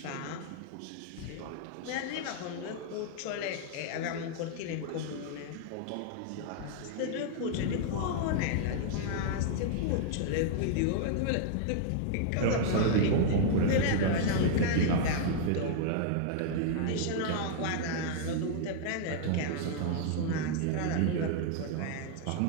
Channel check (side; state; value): both; different; correlation -0.01